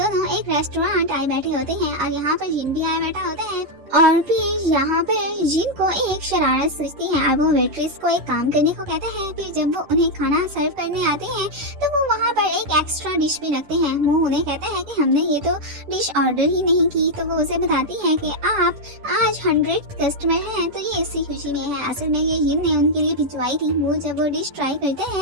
एक रेस्टोरेंट आए बैठे होते हैं, और यहाँ पर जिन भी आया बैठा होता है। और फिर यहाँ पर जिन को एक शरारत सूझती है, और वो वेट्रेस को एक काम करने को कहता है। फिर जब वो उन्हें खाना सर्व करने आते हैं तो वो वहाँ पर एक एक्स्ट्रा डिश भी रखते हैं। मुंह उन्हें कहता है कि हमने ये तो डिश ऑर्डर ही नहीं की। तो वो उसे बताती है कि आप आज 100 कस्टमर हैं, तो ये इसी खुशी में है। असल में ये जिन ने उनके लिए भिजवाई थी। मुंह जब वो डिश ट्राई करते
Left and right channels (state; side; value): late; left; 10 ms